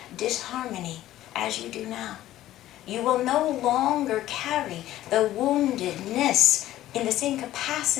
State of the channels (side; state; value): right; quieter; 14.1 dB